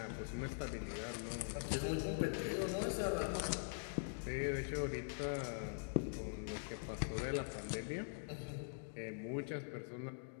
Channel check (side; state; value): right; silent; digital silence